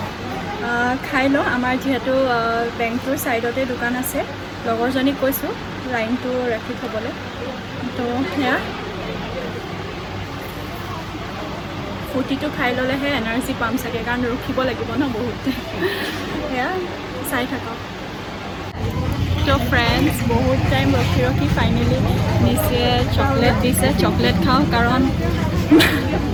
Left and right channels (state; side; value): identical; both; correlation 1.00